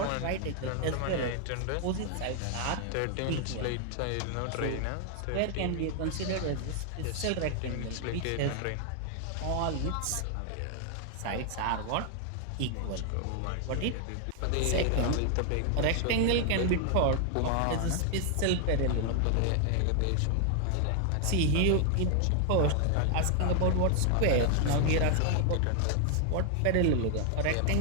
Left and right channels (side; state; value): both; different; correlation 0.00